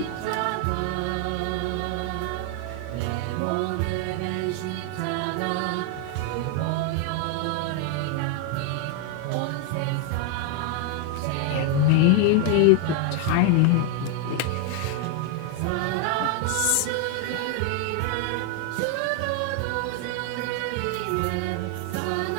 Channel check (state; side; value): different; both; correlation 0.00